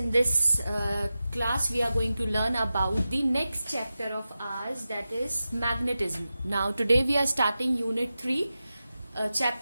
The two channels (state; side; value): inverted; both; correlation -0.93